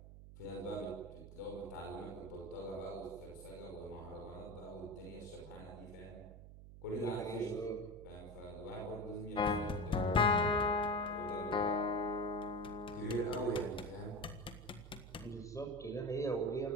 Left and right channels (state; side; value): noise; right; hum, 15 dB below the sound